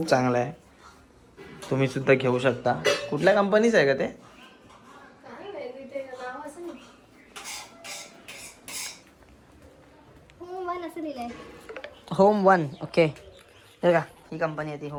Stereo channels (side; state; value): both; identical; correlation 1.00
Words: चांगलं आहे, तुम्ही सुद्धा घेऊ शकता. कुठल्या कंपनीचं आहे का ते? काय माहिती, ते नाव असं नाही. असं लिहिलंय. Home one. ओके, हे का ही कंपनी आहे ती